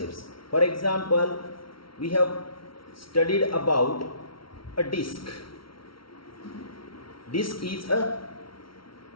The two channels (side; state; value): right; late; 0.74 ms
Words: For example, we have studied about a disk. Disk is a